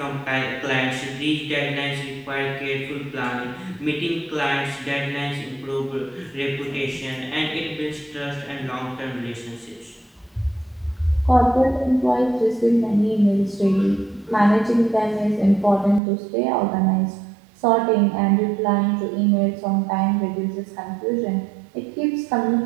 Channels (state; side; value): drops out; left; at 16.0 s